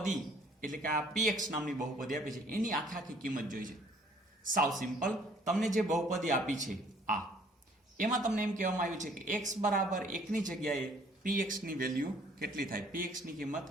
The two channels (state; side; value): normal; both; correlation 0.59